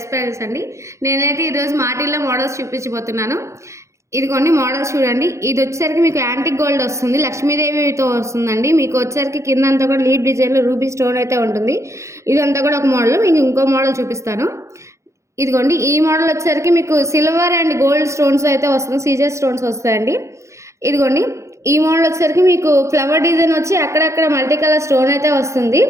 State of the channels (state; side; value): late; left; 0.14 ms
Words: prices అండి. నేనైతే ఈరోజు మాటిల్లో మోడల్స్ చూపించబోతున్నాను. ఇదిగోండి మోడల్స్ చూడండి. ఇది వచ్చేసరికి మీకు యాంటిక్ గోల్డ్ వస్తుంది. లక్ష్మీదేవితో వస్తుందండి. మీకు వచ్చేసరికి కింద అంతా కూడా లీఫ్ డిజైన్లో రూబీ స్టోన్ అయితే ఉంటుంది. ఇదంతా కూడా ఒక మోడల్. మీకు ఇంకో మోడల్ చూపిస్తాను. ఇదిగోండి ఈ మోడల్ వచ్చేసరికి మీకు సిల్వర్ అండ్ గోల్డ్ స్టోన్స్ అయితే వస్తుంది. సీజర్ స్టోన్స్ వస్తాయండి. ఇదిగోండి ఈ మోడల్ వచ్చేసరికి మీకు ఫ్లవర్ డిజైన్ వచ్చి అక్కడక్కడ మల్టీ కలర్ స్టోన్ అయితే వస్తుంది.